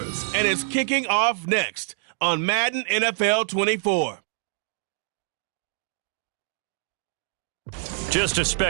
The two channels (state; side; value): silent; left; digital silence